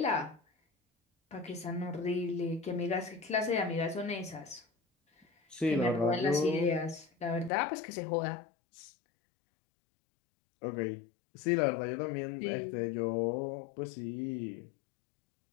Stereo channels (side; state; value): right; drops out; at 7.5 s